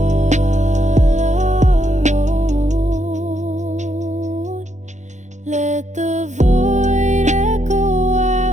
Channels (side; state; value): left; late; 0.34 ms